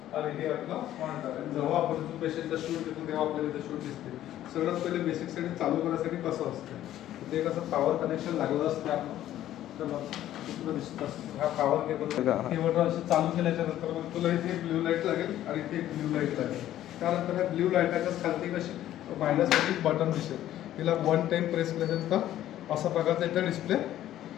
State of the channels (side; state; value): right; quieter; 12.8 dB